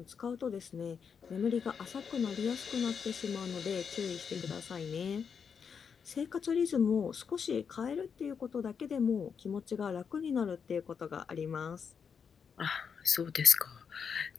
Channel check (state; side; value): quieter; right; 6.5 dB